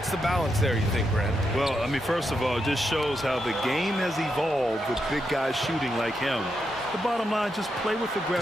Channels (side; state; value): both; normal; correlation 0.83